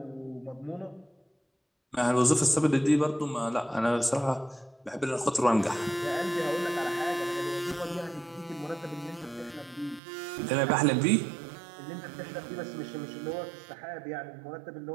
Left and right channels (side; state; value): left; drops out; at 10.0 s